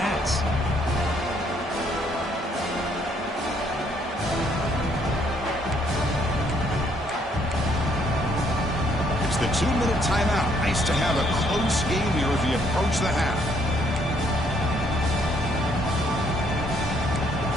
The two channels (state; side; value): normal; both; correlation 0.68